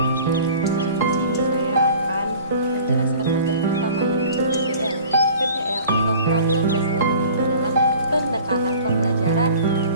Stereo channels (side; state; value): both; inverted; correlation -0.46